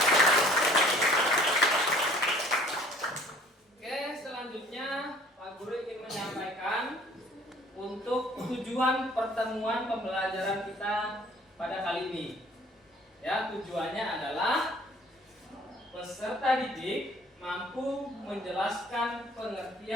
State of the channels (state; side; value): normal; both; correlation 0.54